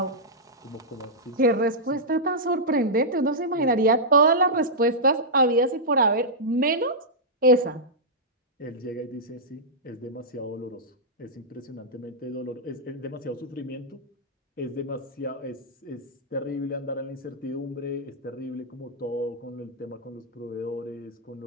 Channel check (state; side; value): normal; both; correlation -0.10